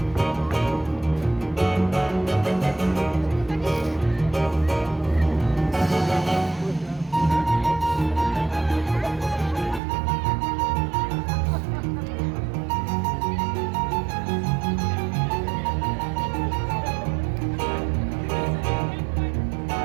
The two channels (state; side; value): drops out; left; at 9.8 s